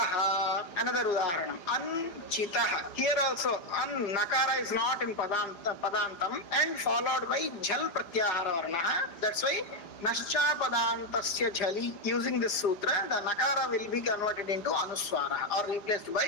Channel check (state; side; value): late; right; 4.9 ms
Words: Another udaharanam. Anchitaha. Here also, Nakara is not in Padantam and followed by Jhal Pratyahara Varnaha. That's why Nascha Padantasya Jhali. Using this sutra, the Nakara will be converted into Anuswara or replaced